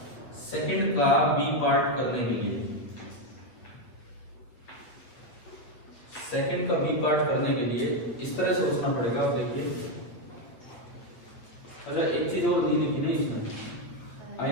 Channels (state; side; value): late; right; 8.5 ms